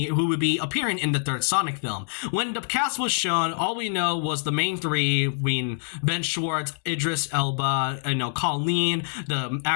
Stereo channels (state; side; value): silent; right; digital silence